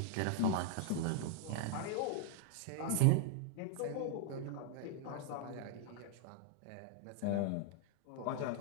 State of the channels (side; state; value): both; different; correlation 0.00